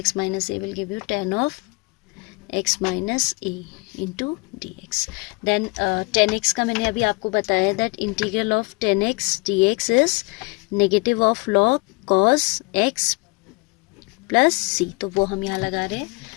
minus a will give you 10 of x minus a into dx. Then 10x का मैंने अभी आपको बताया that integral of 10x dx is negative of log cos x plus c. तो वो हम यहाँ लगा रहे हैं.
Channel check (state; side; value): quieter; right; 28.9 dB